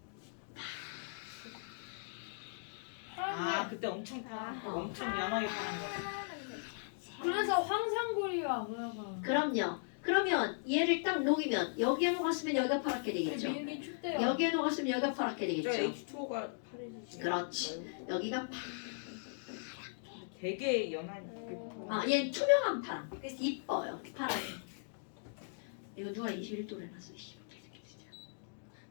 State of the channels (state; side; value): silent; right; digital silence